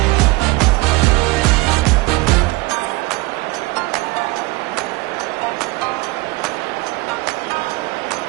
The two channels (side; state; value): left; quieter; 21.7 dB